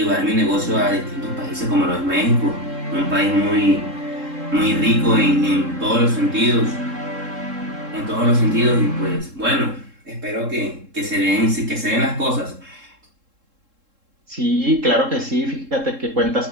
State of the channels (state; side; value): late; left; 3.7 ms